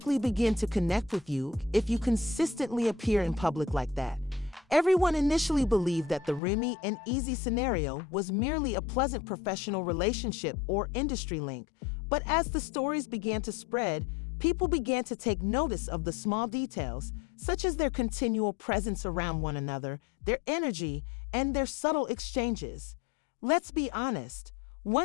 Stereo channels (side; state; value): right; drops out; at 6.4 s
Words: begin to connect with you if you consistently appear in public like that. Everyone initially believed that the Remy and Easy scenario was merely a pleasant professional relationship or industry link, but as the stories began to spread, people began to take notice of the small details, such as their continual presence around one another, their energy, and their subtle exchanges. Let's be honest,